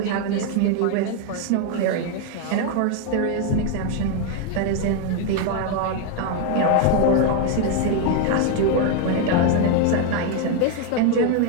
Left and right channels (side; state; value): both; different; correlation 0.01